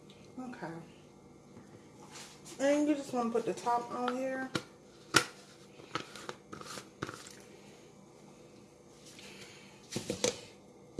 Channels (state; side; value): identical; both; correlation 1.00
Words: Okay. And you just want to put the top on here.